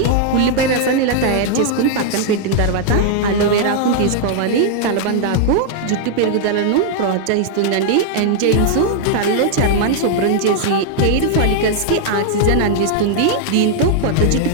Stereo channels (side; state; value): both; different; correlation -0.01